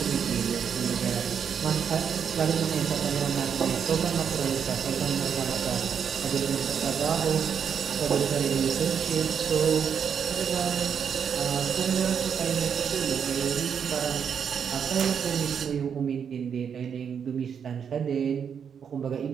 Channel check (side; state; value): left; quieter; 7.4 dB